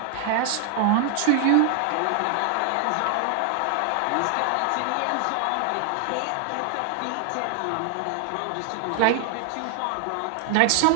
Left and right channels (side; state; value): both; different; correlation 0.00